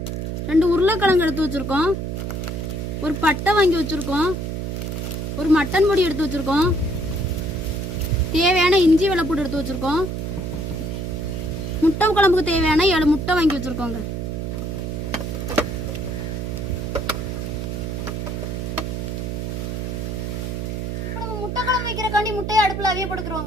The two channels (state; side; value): noise; right; hum, 3 dB below the sound